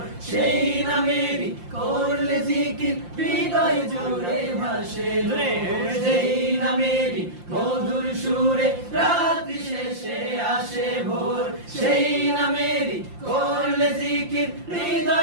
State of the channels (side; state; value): left; late; 5.7 ms